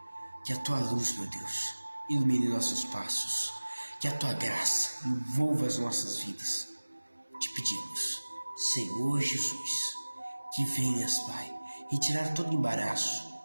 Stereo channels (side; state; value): both; inverted; correlation -1.00